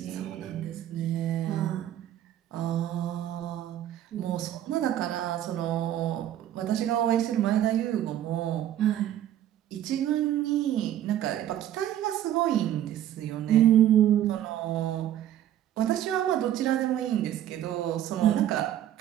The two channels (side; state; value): left; quieter; 11.7 dB